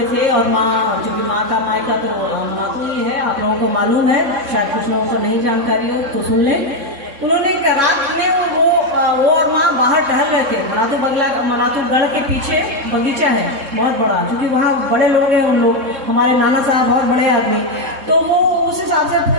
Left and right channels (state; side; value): late; left; 3.6 ms